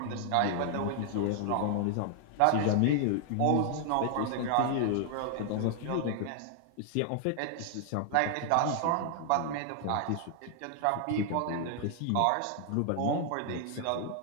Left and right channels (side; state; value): both; different; correlation 0.00